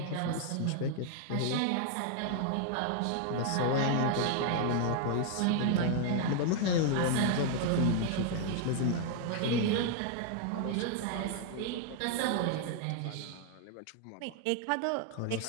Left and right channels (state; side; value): different; both; correlation 0.00